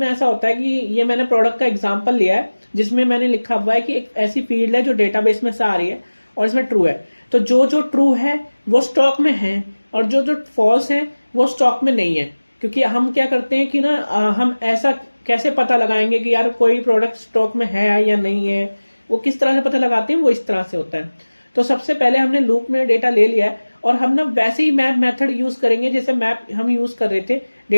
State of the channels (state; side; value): inverted; both; correlation -1.00